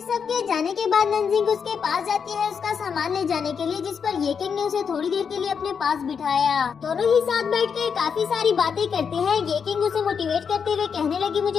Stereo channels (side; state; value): right; quieter; 6.5 dB